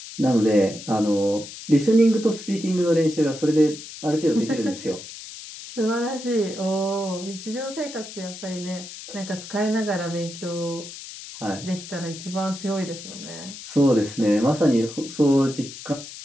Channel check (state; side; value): noise; left; hiss, 13 dB below the sound